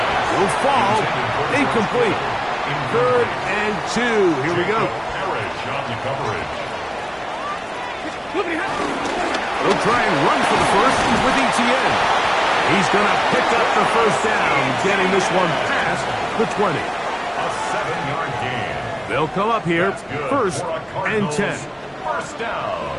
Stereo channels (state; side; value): identical; both; correlation 1.00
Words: Will fall. Incomplete. 3rd and 2. Here we go. They'll try and run for the 1st with Etienne. He's going to pick up the 1st down, getting this one past the 20. A 7-yard gain. They'll come up here. 1st and 10. 1st down.